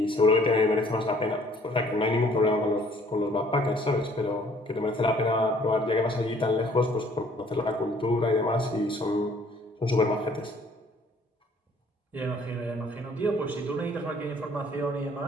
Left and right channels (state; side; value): normal; both; correlation 0.59